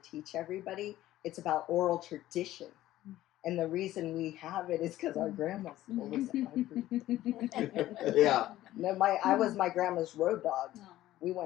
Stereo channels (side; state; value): right; quieter; 14.6 dB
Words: everybody. It's about oral tradition. And the reason we have it is because our grandmas told us it. yeah. No, I was my grandma's road dog. We